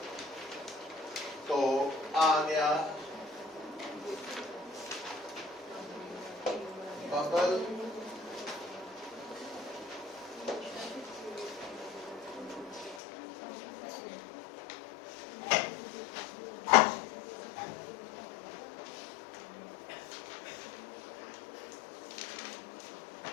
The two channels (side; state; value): right; drops out; at 13.0 s